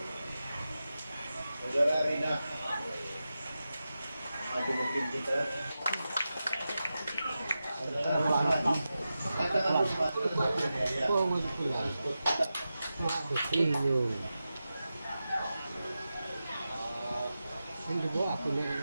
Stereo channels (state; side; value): inverted; both; correlation -0.92